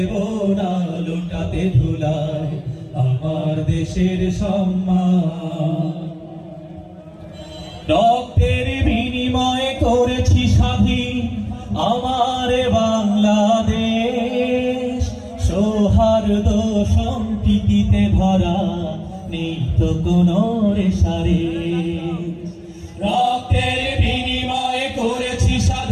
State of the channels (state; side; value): identical; both; correlation 1.00